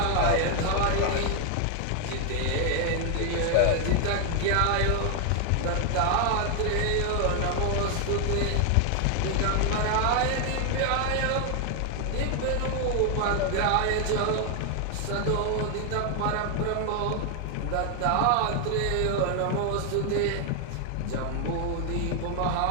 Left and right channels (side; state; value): both; different; correlation 0.00